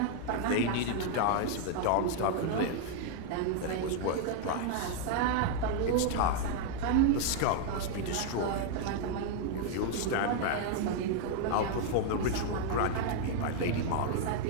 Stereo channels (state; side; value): different; both; correlation 0.00